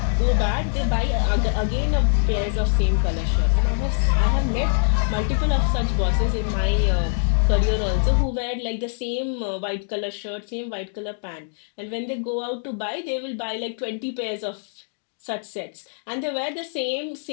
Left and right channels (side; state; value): right; silent; digital silence